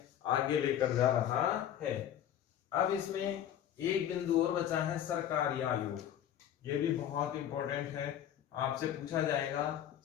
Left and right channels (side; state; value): right; quieter; 10.5 dB